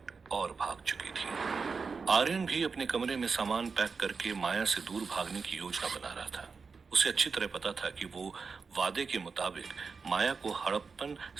और भाग चुकी थी। आर्यन भी अपने कमरे में सामान पैक करके माया से दूर भागने की योजना बना रहा था। उसे अच्छी तरह पता था कि वो वादे के मुताबिक माया को हड़प्पन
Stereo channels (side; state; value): left; quieter; 5.0 dB